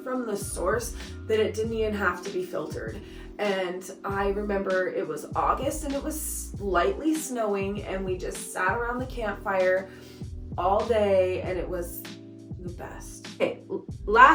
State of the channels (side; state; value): both; identical; correlation 1.00